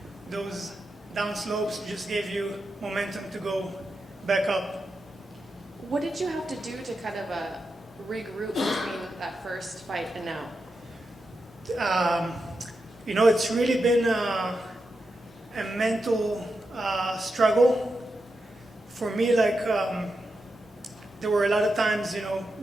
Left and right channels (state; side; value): normal; both; correlation 0.88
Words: those down slopes just gave you momentum to go back up. what did you have to do to kind of regroup between that first fight and now? You know, it's really been a mental struggle for me. There were a lot of times, you know,